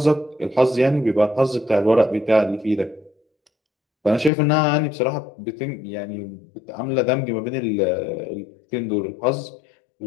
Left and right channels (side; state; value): right; drops out; at 4.3 s